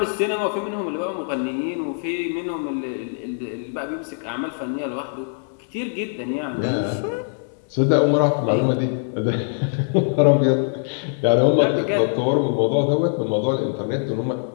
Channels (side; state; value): right; silent; digital silence